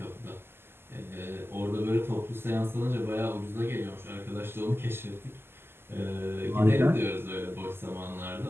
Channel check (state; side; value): late; left; 0.11 ms